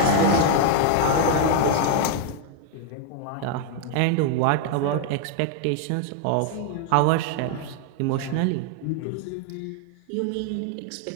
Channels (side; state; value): both; different; correlation 0.00